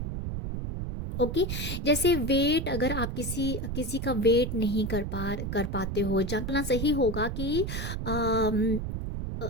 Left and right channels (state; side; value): noise; right; rumble, 4 dB below the sound